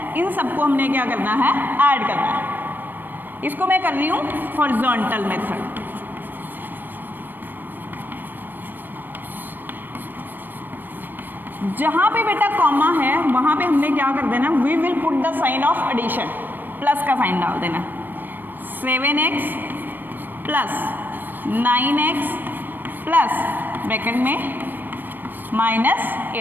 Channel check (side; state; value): left; late; 0.090 ms